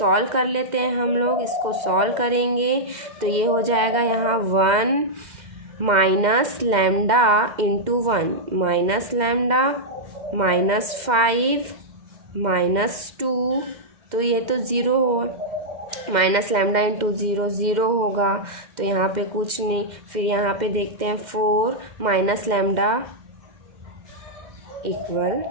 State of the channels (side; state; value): left; late; 2.1 ms